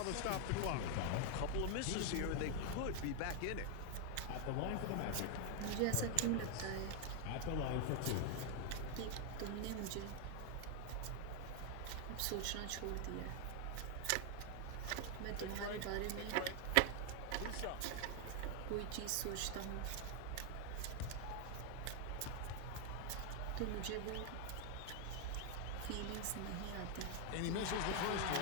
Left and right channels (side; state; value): both; different; correlation 0.01